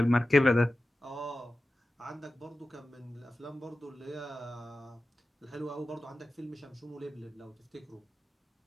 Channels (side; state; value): both; normal; correlation 0.94